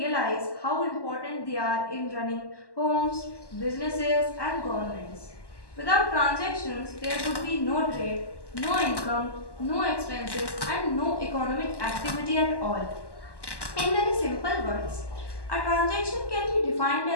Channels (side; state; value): right; late; 1.1 ms